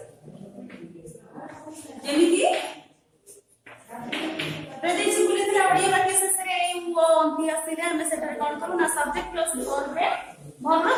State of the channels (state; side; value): identical; both; correlation 1.00